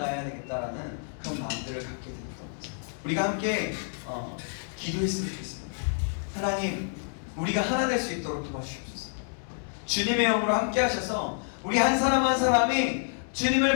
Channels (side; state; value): right; silent; digital silence